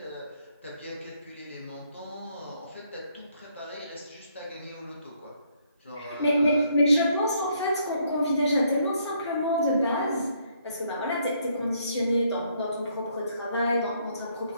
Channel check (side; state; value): both; inverted; correlation -0.70